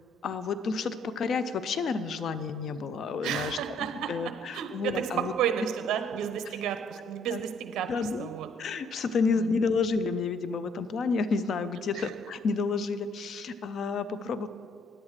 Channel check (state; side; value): normal; both; correlation 0.64